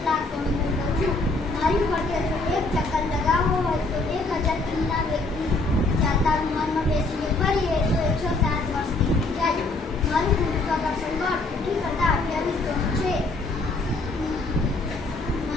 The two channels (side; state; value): right; quieter; 3.2 dB